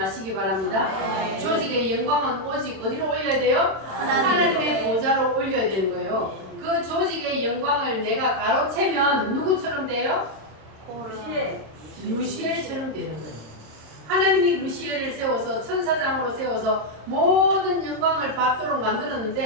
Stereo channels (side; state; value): left; late; 27 ms